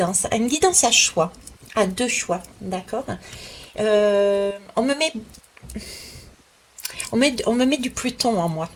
à choix, à deux choix, d'accord? On me met, on me met du Pluton en moi.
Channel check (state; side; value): identical; both; correlation 1.00